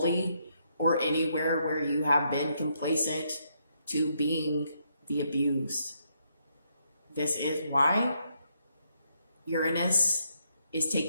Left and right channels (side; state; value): both; inverted; correlation -0.76